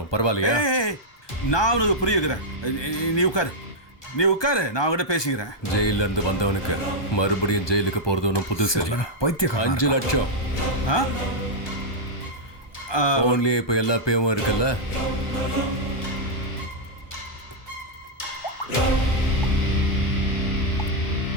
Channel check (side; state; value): right; late; 1.2 ms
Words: பரவாயில்லையா? நான் உனக்கு புரிய வைக்கிறேன். நீ உட்காரு, நான் அவங்ககிட்ட பேசிக்கிறேன். ஜெயில இருந்து வந்தவனுக்கு மறுபடியும் ஜெயிலுக்கு போறது ஒன்றும் புதுசு இல்லை. பைத்தியக்காரன். 5 லட்சம் போன்லயே இப்ப எல்லா பேவும் இருக்குல்ல.